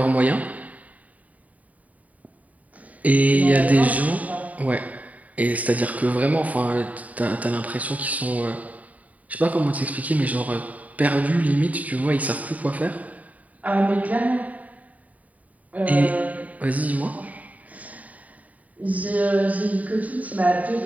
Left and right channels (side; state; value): left; late; 0.071 ms